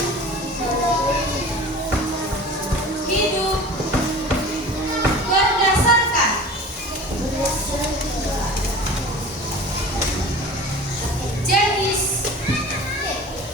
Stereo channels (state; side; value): normal; both; correlation 0.39